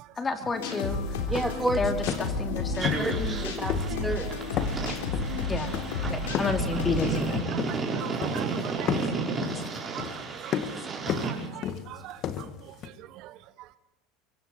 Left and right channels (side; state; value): both; normal; correlation 0.40